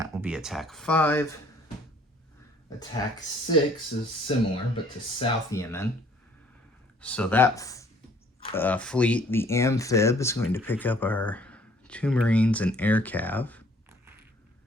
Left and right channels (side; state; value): both; normal; correlation 0.58